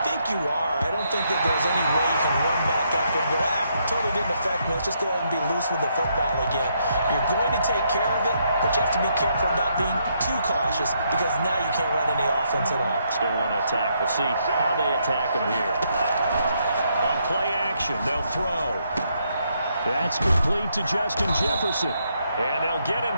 think you are. I don't think that there's any way you can run back after and go, totally didn't affect me. Let's just go ahead and be loose with the football again. You're going to take care of it, but you have to be careful about being too cautious because now you can't run any offense at all. Still want to attack. We'll see how they attack them here. On play action, they'll throw. That's complete to Justin Jefferson. And they'll get him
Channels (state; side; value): inverted; both; correlation -0.75